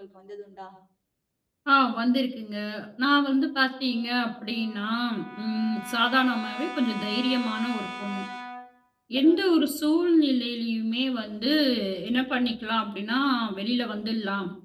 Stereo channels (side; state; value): both; identical; correlation 1.00